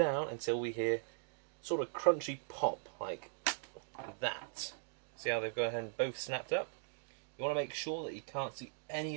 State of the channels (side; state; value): left; silent; digital silence